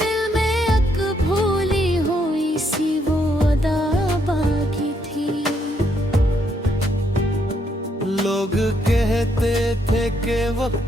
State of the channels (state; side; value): normal; both; correlation 0.74